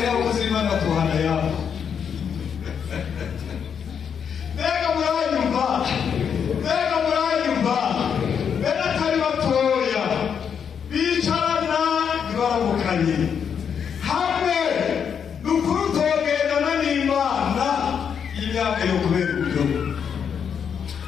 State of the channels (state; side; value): quieter; right; 7.4 dB